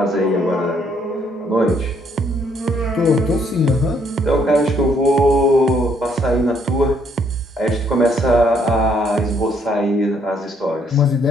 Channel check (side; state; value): both; normal; correlation 0.69